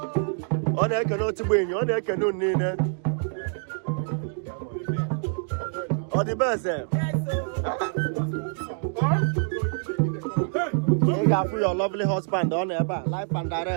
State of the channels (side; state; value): left; silent; 61 dB below the other